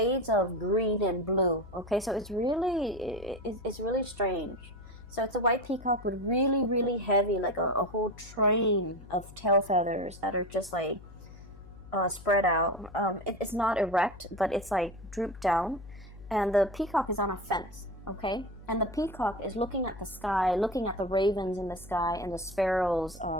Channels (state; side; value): noise; left; hum, 18 dB below the sound